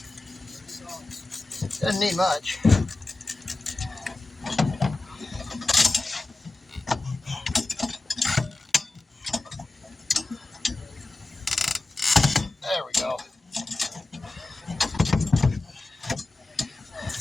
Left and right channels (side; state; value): right; quieter; 3.1 dB